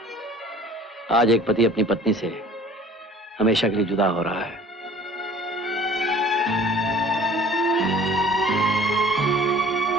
आज एक पति अपनी पत्नी से हमेशा के लिए जुदा हो रहा है।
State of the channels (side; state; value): both; normal; correlation 0.50